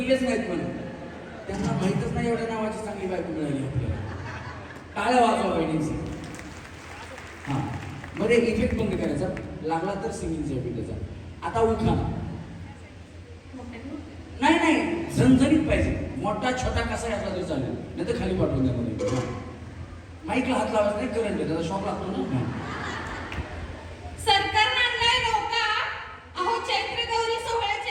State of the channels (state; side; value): identical; both; correlation 1.00